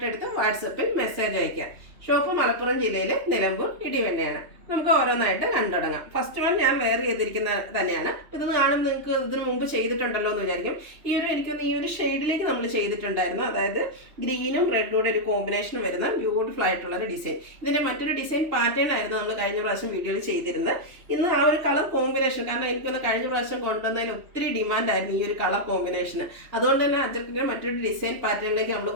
എടുത്ത് വാട്സപ്പിൽ മെസ്സേജ് അയക്കാം. ഷോപ്പ് മലപ്പുറം ജില്ലയിലെ നിലമ്പൂർ ഇടിവെണ്ണയാണ്. നമുക്ക് ഓരോന്നായിട്ട് കണ്ടുടങ്ങാം. ഫസ്റ്റ് വൺ ഞാൻ വെയർ ചെയ്തിരിക്കുന്ന തന്നെയാണ്. ഇതൊന്ന് കാണുമ്പോൾ നിങ്ങൾക്ക് ഇതിന് മുമ്പ് ചെയ്തിട്ടുണ്ടല്ലോ എന്ന് വിചാരിക്കും. എനിക്കൊന്ന് ഈ ഒരു ഷെയ്ഡിലേക്ക് നമ്മൾ ചെയ്തിട്ടുണ്ടായിരുന്നു. അതായത് ഗ്രീനും റെഡും ഒരു കോമ്പിനേഷൻ വരുന്ന ബ്യൂട്ടിഫുൾ ആയിട്ടുള്ള ഒരു ഡിസൈൻ. ഇതിൻ്റെ മറ്റൊരു ഡിസൈൻ പാറ്റേൺ ആയിരുന്നു നമ്മൾ കഴിഞ്ഞ പ്രാവശ്യം വീഡിയോയിൽ ചെയ്തിരുന്നത്. ഇന്ന് ആ ഒരു കളർ കോമ്പിനേഷൻ, കാരണം എനിക്കൊന്ന് കഴിഞ്ഞ പ്രാവശ്യം കൊണ്ടുവന്നതിന് ഒത്തിരി ഡിമാൻഡായിരുന്നു ഈ ഒരു കളർ കോമ്പിനേഷന്. അതുകൊണ്ട് തന്നെ അജർക്കിൻ്റെ മറ്റൊരു ഡിസൈൻ പാറ്റേണിലേക്ക് നമ്മൾ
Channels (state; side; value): late; left; 3.1 ms